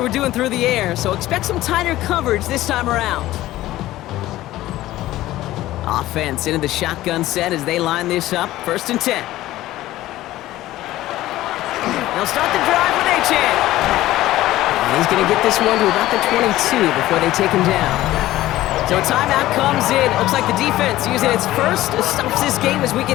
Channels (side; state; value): right; quieter; 15.6 dB